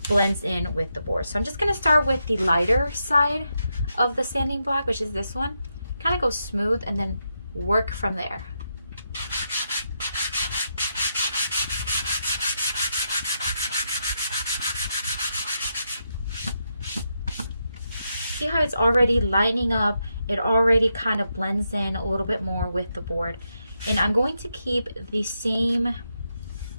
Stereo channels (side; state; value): both; inverted; correlation -0.83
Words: blends in with the board. So I'm just going to start with the lighter side of the sanding block, which is this one. Kind of go smooth and then work from there. See how it's already lightening up? It already kind of blends in a little bit more with the board. And I'm going to keep the same